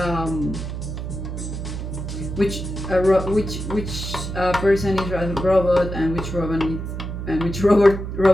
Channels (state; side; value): noise; right; hum, 6 dB below the sound